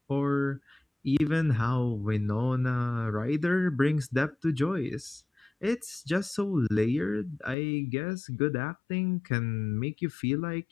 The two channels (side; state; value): right; drops out; at 7.6 s